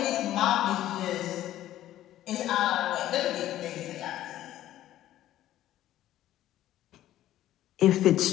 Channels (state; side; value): quieter; right; 13.4 dB